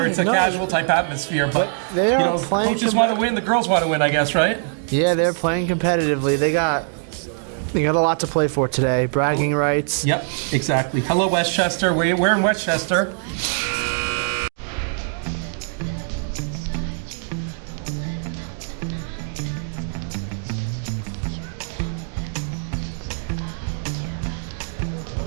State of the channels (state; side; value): silent; left; digital silence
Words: it's a casual type atmosphere. But they are playing. Coaches want to win. The girls want to win, I guess, right? Yeah, they're playing competitively. They got a lot to play for today. Bragging rights. Yep, exactly. Hello, Westchester. We're in Westchester.